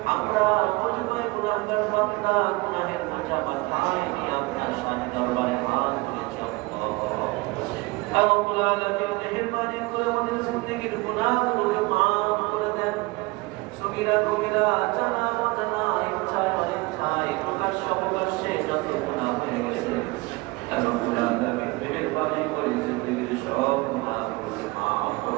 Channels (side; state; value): left; quieter; 24.3 dB